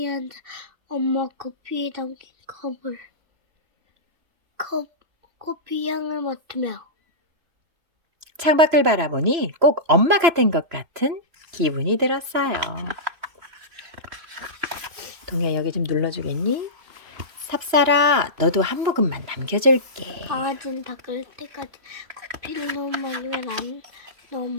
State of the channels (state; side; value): late; left; 3.0 ms